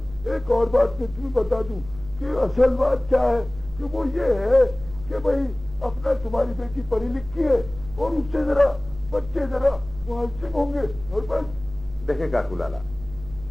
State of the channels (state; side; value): noise; right; hum, 17 dB below the sound